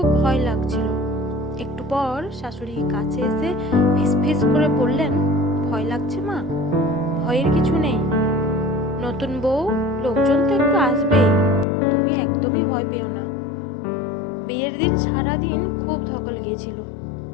ভয় লাগছিল। একটু পর শাশুড়ি কাছে এসে ফিসফিস করে বললেন, ভয় লাগছে মা? ভয়ের কিছু নেই। নতুন বউ, লোকজন তো একটু আসবেই, তুমি একদমই ভয় পেও না। বিয়ের দিন সারাদিন খুব ধকল গিয়েছিল,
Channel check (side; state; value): right; drops out; at 11.7 s